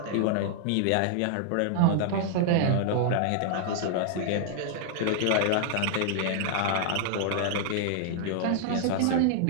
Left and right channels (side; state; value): both; different; correlation -0.01